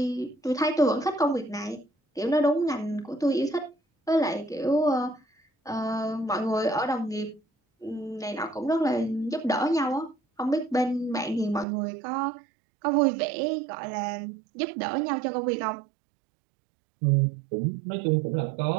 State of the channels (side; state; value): left; drops out; at 11.7 s